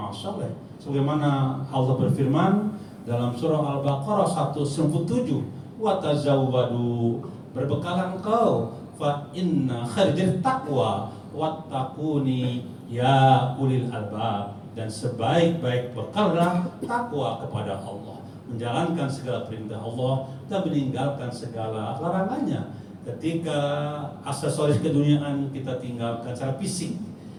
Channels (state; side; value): identical; both; correlation 1.00